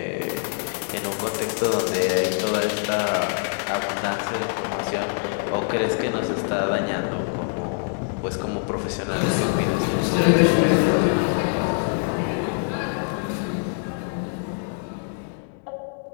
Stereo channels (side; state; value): right; silent; digital silence